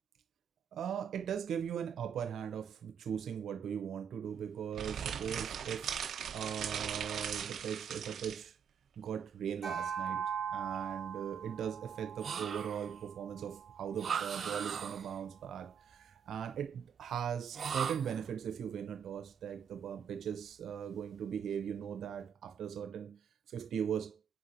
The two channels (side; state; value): left; quieter; 7.8 dB